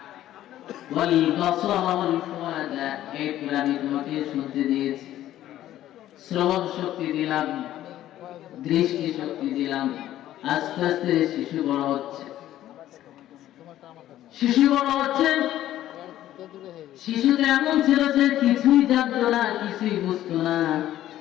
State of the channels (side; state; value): right; quieter; 13.1 dB